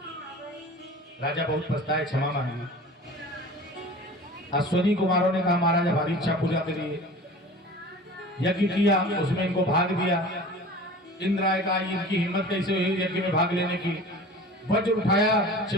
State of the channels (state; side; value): normal; both; correlation 0.40